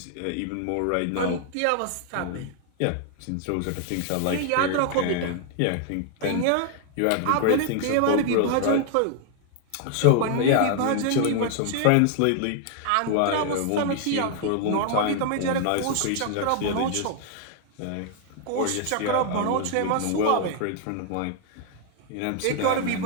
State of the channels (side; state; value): both; different; correlation 0.00